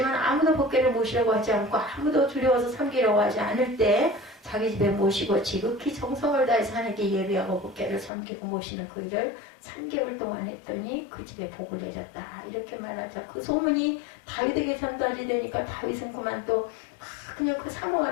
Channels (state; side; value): drops out; right; at 8.1 s